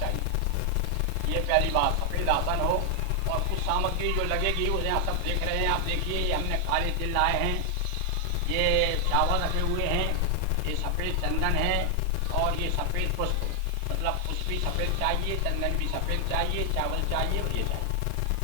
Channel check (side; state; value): both; different; correlation 0.00